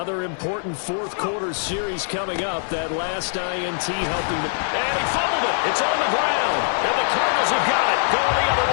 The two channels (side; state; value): right; silent; digital silence